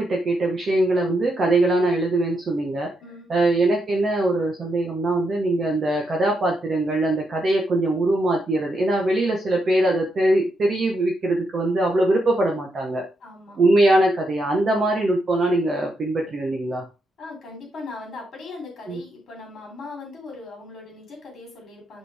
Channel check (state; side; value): normal; both; correlation 0.81